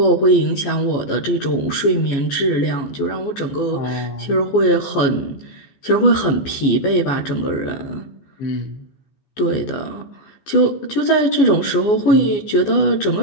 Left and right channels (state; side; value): late; right; 14 ms